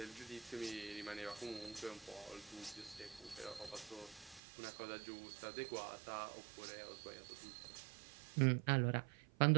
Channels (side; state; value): left; drops out; at 4.4 s